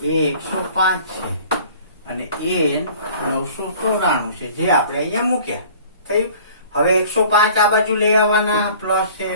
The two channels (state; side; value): inverted; both; correlation -0.49